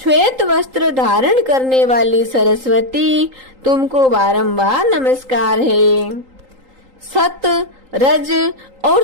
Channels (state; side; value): late; left; 3.8 ms